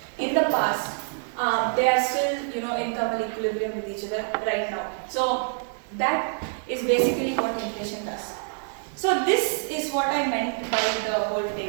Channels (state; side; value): silent; left; 61 dB below the other